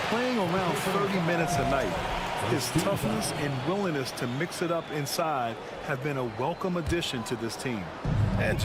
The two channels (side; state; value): both; identical; correlation 1.00